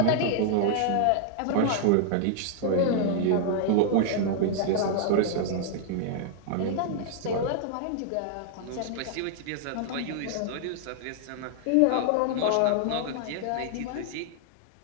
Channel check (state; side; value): different; both; correlation -0.01